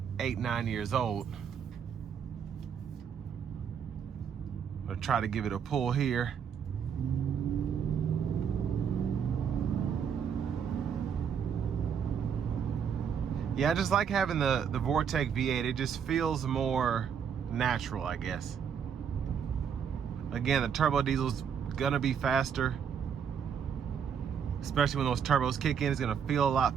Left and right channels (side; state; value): left; quieter; 7.5 dB